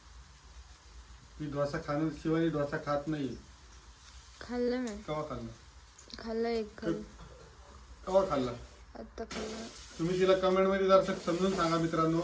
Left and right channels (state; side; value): identical; both; correlation 1.00